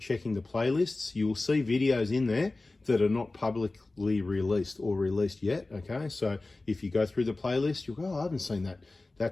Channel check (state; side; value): quieter; right; 3.2 dB